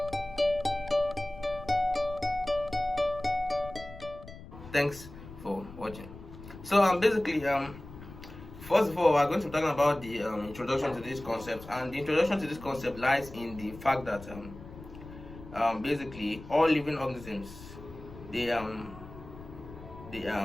Thanks for watching. So basically first of all, we're going to be talking about the introduction to this concept, and the introduction to this concept lies in the fact that basically all living organisms they they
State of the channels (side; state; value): left; noise; rumble, 16 dB below the sound